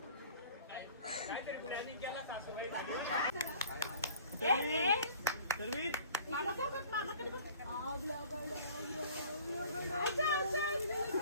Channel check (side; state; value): both; inverted; correlation -0.50